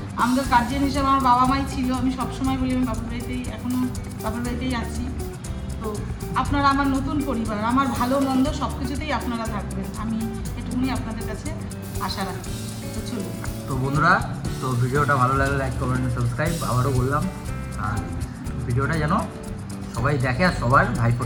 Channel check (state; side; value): identical; both; correlation 1.00